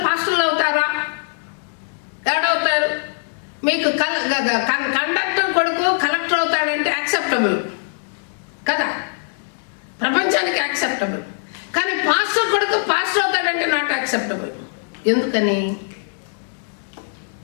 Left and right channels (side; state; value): right; silent; digital silence